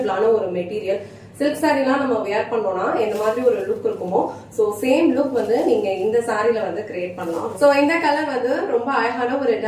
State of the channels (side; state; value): both; identical; correlation 1.00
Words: ஒரு மெட்டீரியல். சில்க் சாரீலாம் நம்ம வியர் பண்ணோம்னா இந்த மாதிரி ஒரு லுக் இருக்குமோ, சோ சேம் லுக் வந்து நீங்க இந்த சாரில வந்து கிரியேட் பண்ணலாம். சோ இந்த கலர் வந்து ரொம்ப அழகான ஒரு